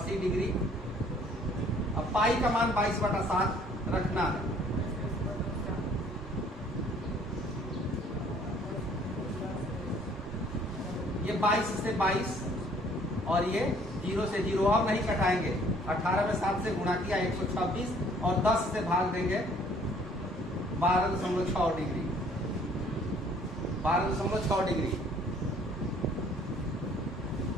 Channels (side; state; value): both; normal; correlation 0.58